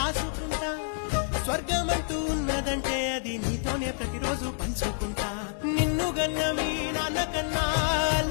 స్వర్గమంటూ ఉన్నదంటే అది నీతోనే ప్రతిరోజు పంచుకుంటా నిన్ను గన్న మీ నాన్న కన్నా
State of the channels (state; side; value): silent; right; digital silence